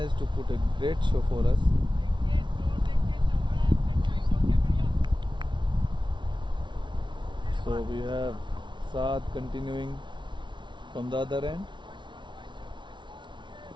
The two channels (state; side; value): late; left; 0.23 ms